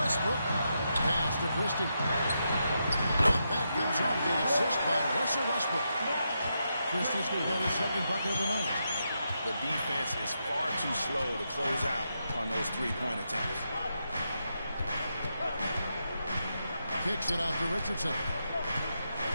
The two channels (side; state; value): both; inverted; correlation -0.84